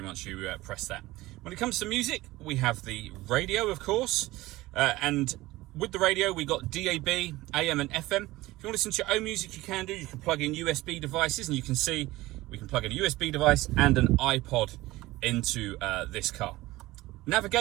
once you press that. When it comes to music, we have the radio, of course, and with the radio, we got DAB, AM and FM. If you want to listen to your own music, you can do. You can plug in USB devices, and you can see we can plug in a USB device and an iPod into this car.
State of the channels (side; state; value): left; quieter; 18.6 dB